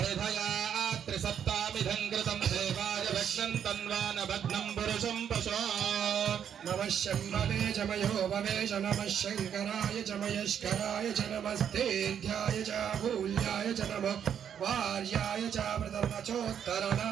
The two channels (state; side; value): quieter; left; 8.6 dB